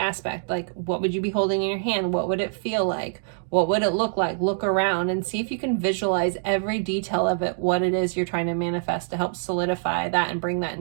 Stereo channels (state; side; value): silent; left; digital silence